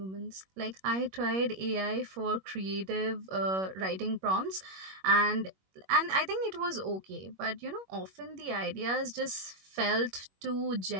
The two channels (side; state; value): left; late; 21 ms